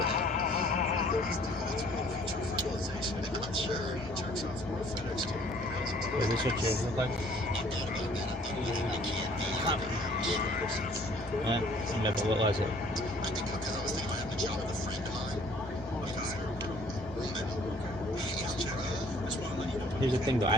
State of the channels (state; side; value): normal; both; correlation 0.57